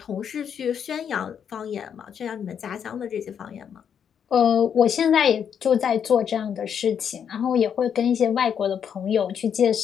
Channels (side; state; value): right; quieter; 8.0 dB